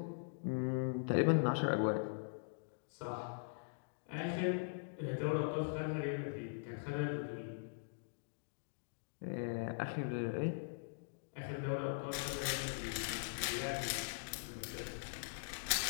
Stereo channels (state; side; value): silent; right; digital silence